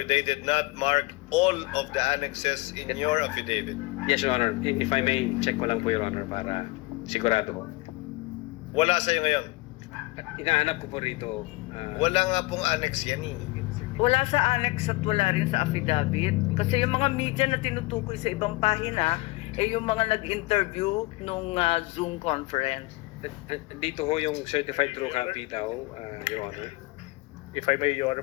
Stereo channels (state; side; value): quieter; right; 22.6 dB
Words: they did not mark all of the annexes in your affidavit. Yes, Your Honor. If I may, check ko lang po, Your Honor, para sigurado ko. Wala sa'yo ngayon. Inahanap ko po rito. Wala nga pong annex yan eh. Wala sa annex at wala rin sa affidavit. Kasi yung mga media na tinutukoy sa ibang pahina, eh yung mga nag-interview nung Zoom conference. Dito ho yung certified true copy daw, Your Honor. If I may, Your Honor,